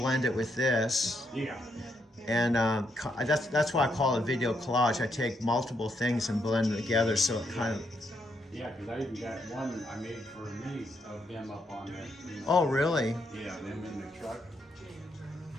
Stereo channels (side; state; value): both; normal; correlation 0.78